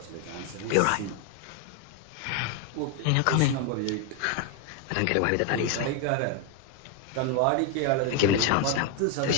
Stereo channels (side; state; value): both; different; correlation 0.01